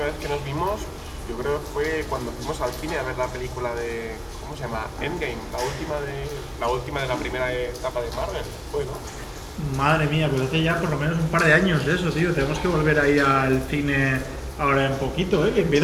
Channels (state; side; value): identical; both; correlation 1.00